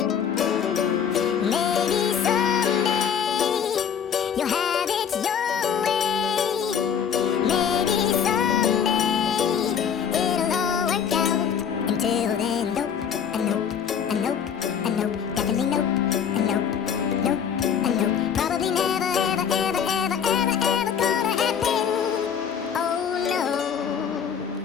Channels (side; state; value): right; quieter; 7.8 dB